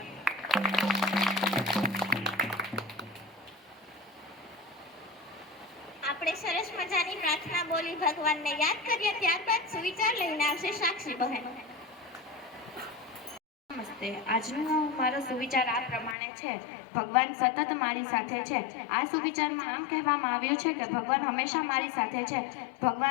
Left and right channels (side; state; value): right; drops out; at 16.2 s